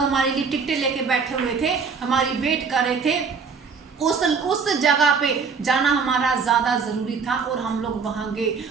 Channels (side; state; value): left; quieter; 5.5 dB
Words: लिए टिकटें लेके बैठे हुए थे, हमारी वेट कर रहे थे, उस जगह पे जाना हमारा ज्यादा जरूरी था और हम लोग वहां गए।